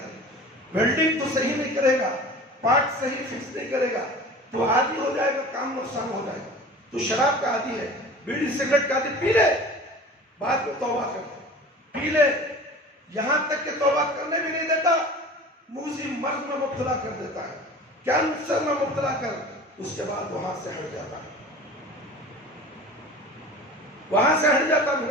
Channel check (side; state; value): both; normal; correlation 0.39